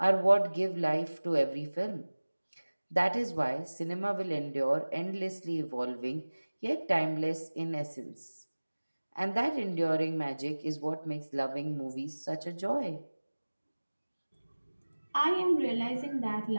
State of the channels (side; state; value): both; inverted; correlation -1.00